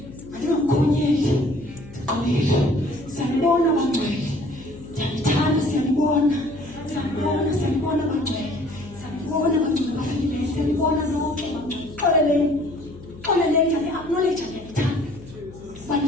Andingamkhonyeli, ndiqolile. Siyanibona bangcwele, ndiyanithanda, siyanibona bangcwele, siyanibona bangcwele bafikileyo, siyanibona lonke bangcwele. Xoleleni, acknowledge ndiyanithanda, uba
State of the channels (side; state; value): left; noise; hum, 18 dB below the sound